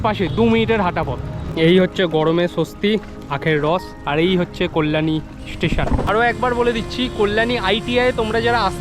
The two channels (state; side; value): identical; both; correlation 1.00